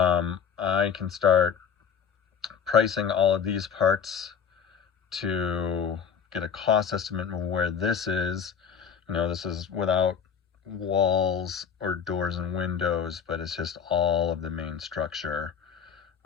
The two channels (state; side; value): quieter; right; 7.2 dB